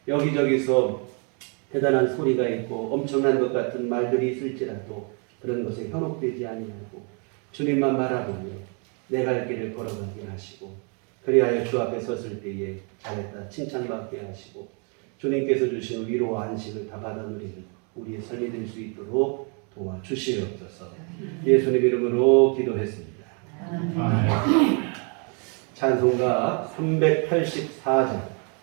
여기저기서 대단한 소리가 있고 엄청난 것 같은 말들이 있을지라도 그런 것에 현혹되지 아니하고 주님만 바라보며 내 갈 길을 걸어가게 하시고 그리하여 주 앞에 섰을 때에 잘했다 칭찬받게 하시고 주님께서 주신 위로와 안식을 다 받아 누리는 우리의 삶이 될 수 있도록 도와주시옵소서. 예수님 이름으로 기도했습니다. 찬송가 384장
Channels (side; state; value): left; quieter; 37.2 dB